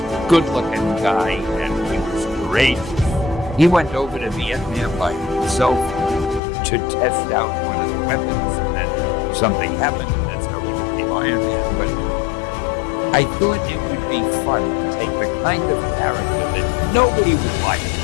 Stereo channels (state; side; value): drops out; right; at 6.4 s